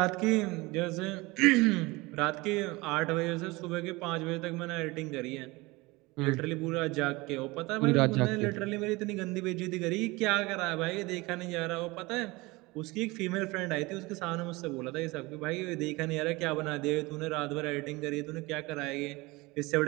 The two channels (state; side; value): quieter; left; 22.8 dB